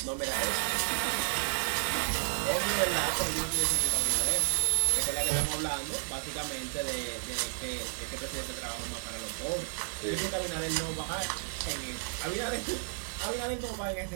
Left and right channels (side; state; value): left; silent; 56 dB below the other